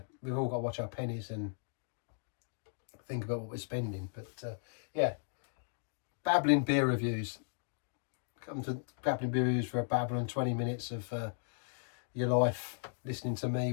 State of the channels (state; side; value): silent; right; digital silence